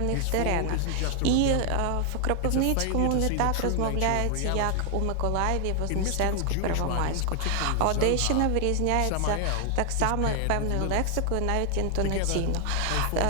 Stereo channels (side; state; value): both; different; correlation 0.00